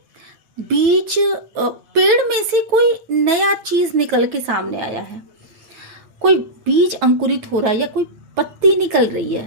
बीज, पेड़ में से कोई नया चीज निकल के सामने आया है, कोई बीज अंकुरित हो रहा है, या कोई पत्ती निकल रही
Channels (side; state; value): left; late; 8.6 ms